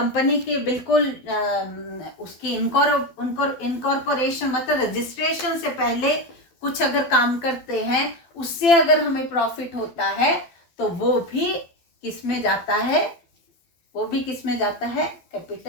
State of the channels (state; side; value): late; right; 12 ms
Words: के बिल्कुल उसकी इनकॉर्पोरेशन मतलब रजिस्ट्रेशन से पहले कुछ अगर काम करते हैं उससे अगर हमें प्रॉफिट होता है तो वो भी किस में जाता है, वो भी किस में जाता है,